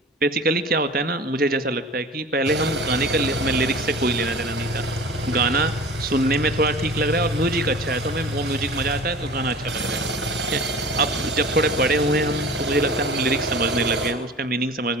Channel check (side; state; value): both; normal; correlation 0.40